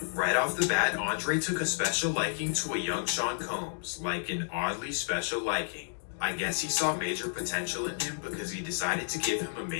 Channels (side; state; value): right; silent; digital silence